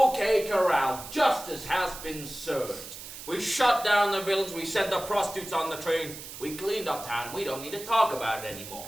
Corral, justice has been served. We shut down the villains, we sent the prostitutes on the train, we cleaned up town, and we don't need to talk about it anymore.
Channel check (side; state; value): right; noise; hiss, 12 dB below the sound